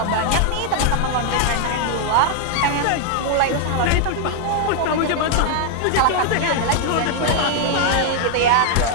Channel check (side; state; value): both; different; correlation 0.00